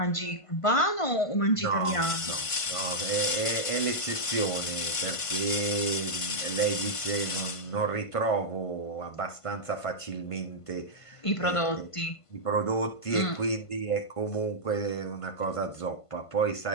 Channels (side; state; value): right; late; 1.5 ms